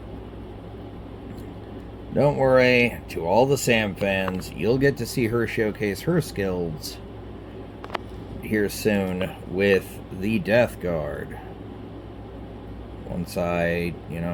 Don't worry, to all the Sam fans, you'll get to see her showcase her skills here soon with the Death Guard. Once I,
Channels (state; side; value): identical; both; correlation 1.00